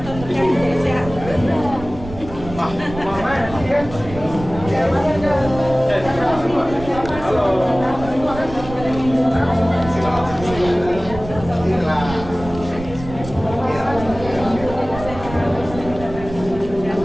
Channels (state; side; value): noise; right; rumble, 12 dB below the sound